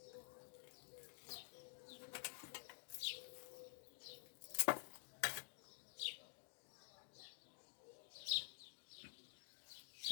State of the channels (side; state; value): right; silent; digital silence